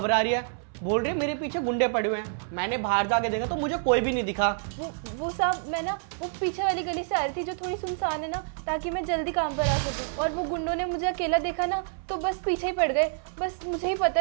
रही है, बोल रही है मेरे पीछे गुंडे पड़े हुए हैं। मैंने बाहर जाके देखा तो मुझे कोई भी नहीं दिखा। वो साहब मैं ना वो पीछे वाली गली से आ रही थी जो थोड़ी सुनसान है ना, ताकि मैं जल्दी काम पर आ सकूं। और वो गुंडों ने मुझे अकेला देखा ना तो बस पीछे ही पड़ गए। बस मुझे ही पता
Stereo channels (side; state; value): left; silent; 60 dB below the other